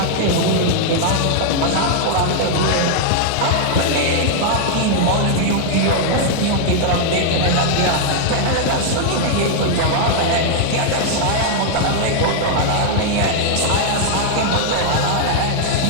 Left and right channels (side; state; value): both; different; correlation -0.01